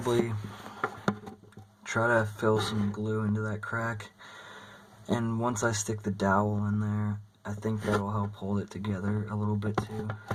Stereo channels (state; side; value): identical; both; correlation 1.00